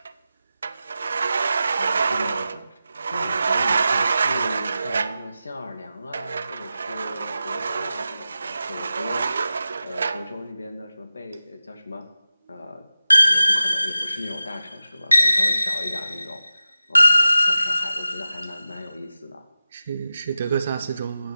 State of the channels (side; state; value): both; inverted; correlation -0.93